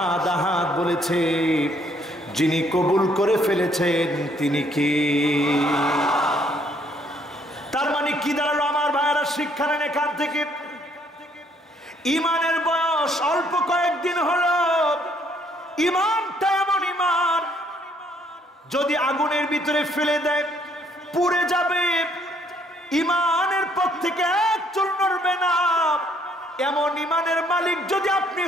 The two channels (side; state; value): both; normal; correlation 0.66